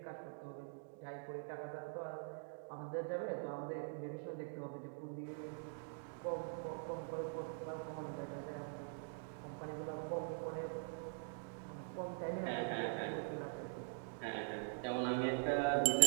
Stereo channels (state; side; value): silent; left; digital silence